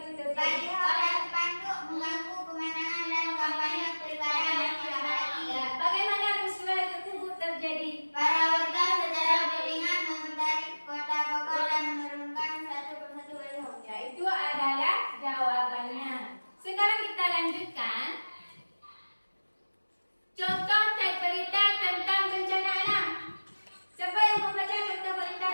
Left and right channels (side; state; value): both; inverted; correlation -1.00